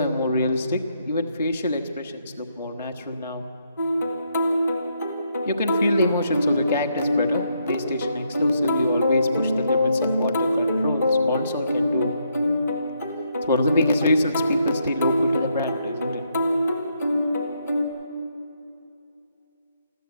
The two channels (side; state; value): both; inverted; correlation -0.76